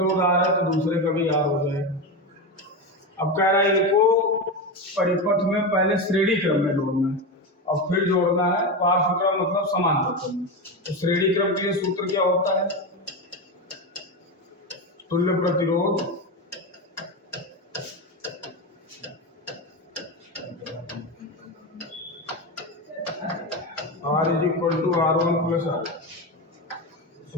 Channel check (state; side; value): normal; both; correlation 0.17